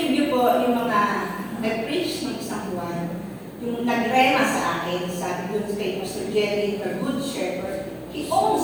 po yung mga nag-preach ng isang buwan, yung nagrema sa akin, sabi doon kay Pastor Jerry, the Good Shepherd, He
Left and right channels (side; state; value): both; identical; correlation 1.00